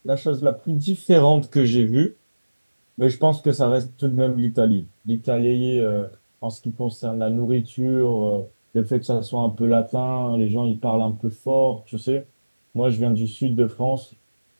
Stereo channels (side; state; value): both; inverted; correlation -1.00